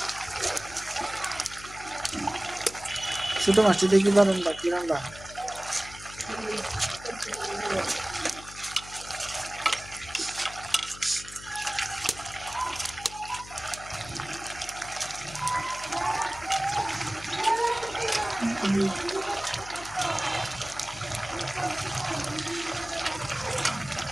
ছোট মাছটি দেখি পারেন বা কি রান্না।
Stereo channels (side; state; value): left; noise; hum, 16 dB below the sound